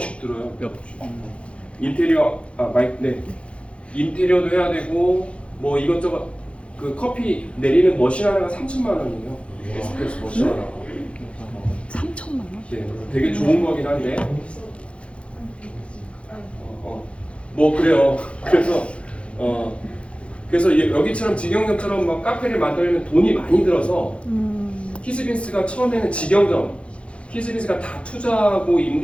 들어요. 인테리어 인테리어도 해야 되고 뭐 이것저것 그 커피 내리는 머신 하나가 3천만 원이에요. 에스프레소 머신 하나. 3천만 원? 네, 되게 좋은 거긴 한데. 뭐 그래요. 그래서 여기처럼 직영점처럼 막 카페를 만들려면 돈이 많이 들어서 히스빈스가 처음에는 직영점, 히스빈스가 다 투자하고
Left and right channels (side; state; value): right; late; 0.060 ms